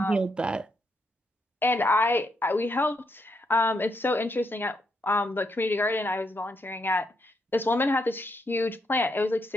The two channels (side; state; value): both; normal; correlation 0.78